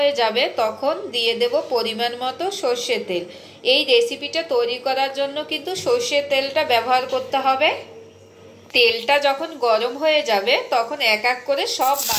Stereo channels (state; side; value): identical; both; correlation 1.00